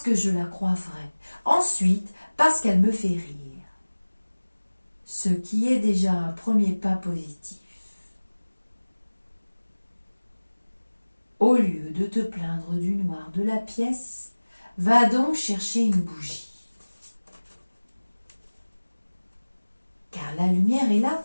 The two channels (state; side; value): inverted; both; correlation -1.00